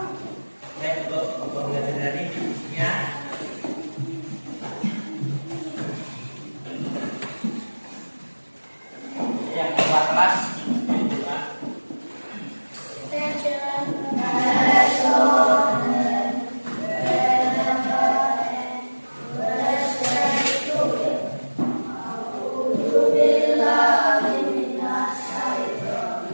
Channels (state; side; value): inverted; both; correlation -1.00